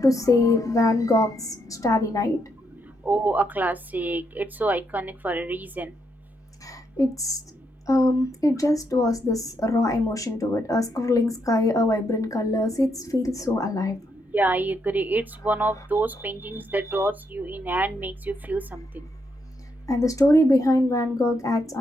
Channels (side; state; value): both; normal; correlation 0.78